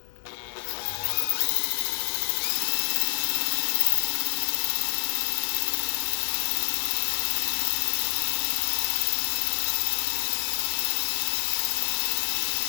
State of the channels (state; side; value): silent; right; digital silence